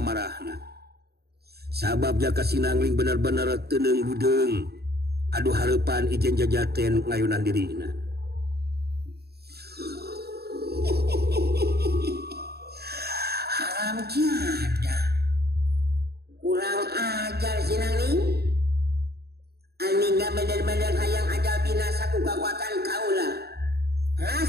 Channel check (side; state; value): left; late; 0.47 ms